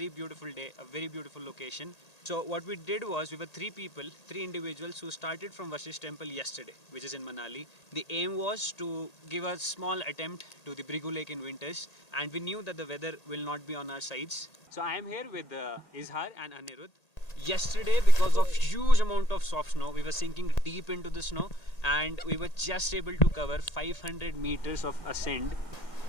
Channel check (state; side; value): late; right; 1.8 ms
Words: beautiful day, a very beautiful location. So what we did was, we were three individuals who started from Vasishtha temple yesterday, which is in Manali. The aim was to give a small attempt to the Bhrigu Lake in winters, and we knew that the weather will not be on our sides. So I am here with Izhar and Anirudh. Yesterday, because of huge amount of soft snow, we were sinking deep into the snow and we were just able to cover 500 meters of ascent